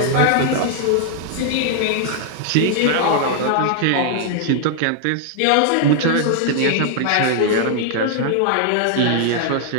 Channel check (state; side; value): different; both; correlation 0.00